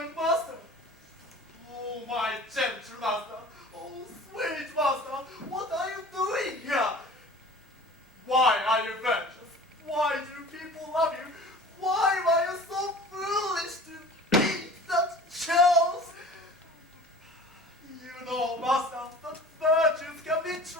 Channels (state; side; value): normal; both; correlation 0.42